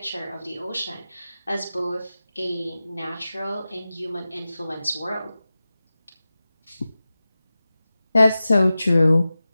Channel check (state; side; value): inverted; both; correlation -0.95